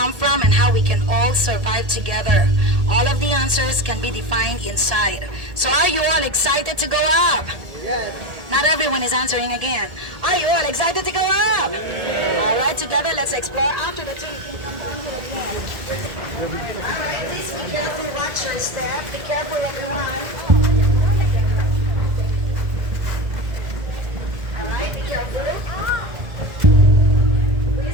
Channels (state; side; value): late; left; 1.8 ms